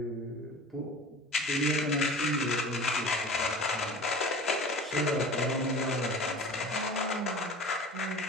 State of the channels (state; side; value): normal; both; correlation 0.39